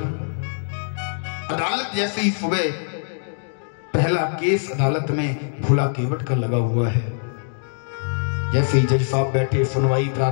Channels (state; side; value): silent; right; 62 dB below the other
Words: अदालत जैसे ही सुबह पहला केस अदालत में भोला केवट का लगा हुआ है। जैसे ही जज साहब बैठे, सुनवाई